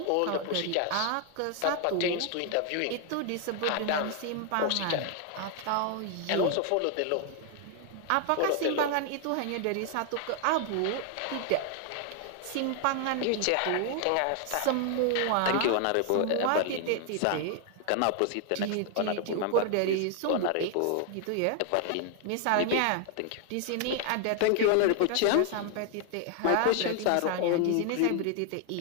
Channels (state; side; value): different; both; correlation 0.00